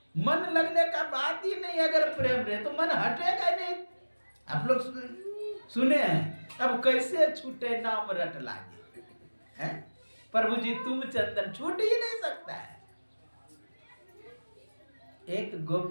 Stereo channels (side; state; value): both; inverted; correlation -1.00